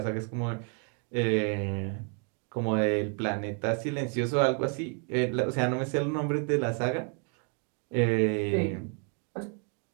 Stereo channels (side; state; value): left; quieter; 39.4 dB